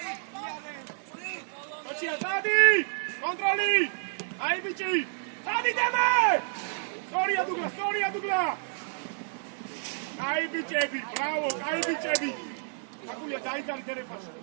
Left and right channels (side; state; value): left; silent; 58 dB below the other